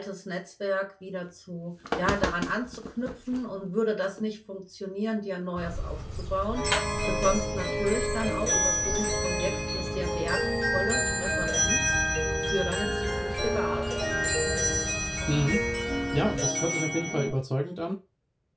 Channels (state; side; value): identical; both; correlation 1.00